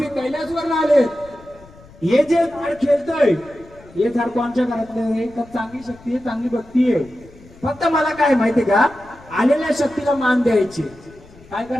कैलासवर आलेत, हे जे झाड खेळतंय हे झाड कोणच्या घरातलं? का चांगली शक्ती आहे, चांगली भक्ती आहे. फक्त मला काय माहितीये का? आलेल्या शक्तीला मान द्यायचे. काय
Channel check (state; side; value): noise; left; rumble, 23 dB below the sound